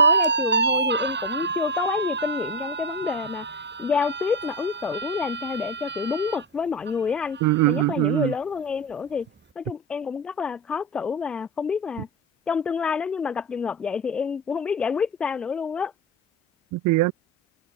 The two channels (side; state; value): both; normal; correlation 0.15